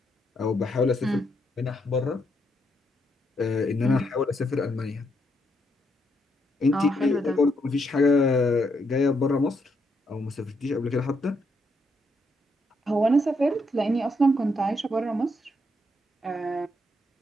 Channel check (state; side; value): normal; both; correlation 0.77